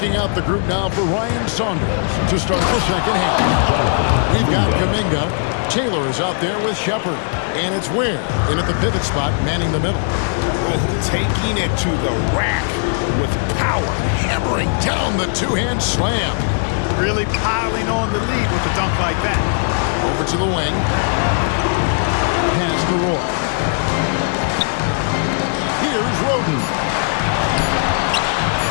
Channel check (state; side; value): silent; right; 67 dB below the other